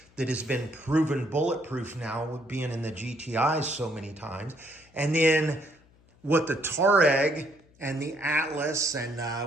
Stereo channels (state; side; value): noise; left; hum, 30 dB below the sound